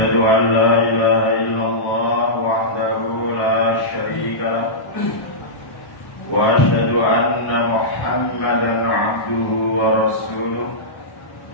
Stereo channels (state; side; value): late; right; 1.1 ms